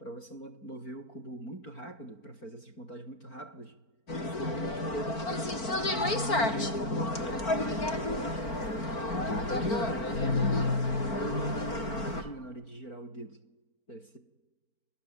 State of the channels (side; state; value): right; late; 4.4 ms